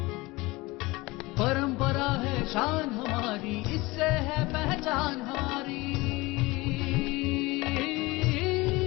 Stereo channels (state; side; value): quieter; right; 22.2 dB